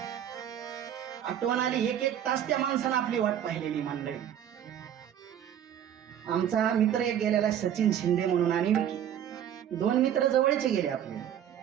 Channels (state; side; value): quieter; left; 10.0 dB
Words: आठवण आली, एक एक तास त्या माणसानं आपली वाट पाहिलेली मंडळी. आमचा मित्र एक गेलेला सचिन शिंदे म्हणून आणि विकी, दोन मित्र जवळचे गेले आपले.